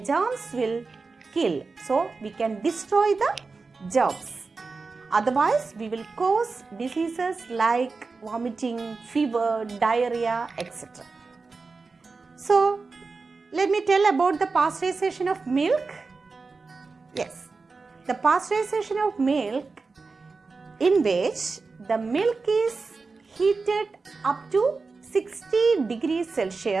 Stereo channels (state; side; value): quieter; left; 4.2 dB